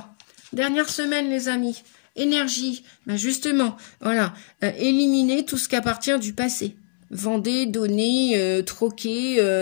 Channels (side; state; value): right; silent; 63 dB below the other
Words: Dernière semaine, les amis. Énergie. Ben justement, voilà. Éliminez tout ce qui appartient du passé. Vendez, donnez,